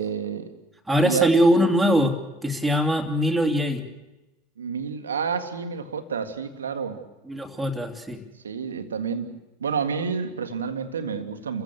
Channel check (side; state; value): both; normal; correlation 0.48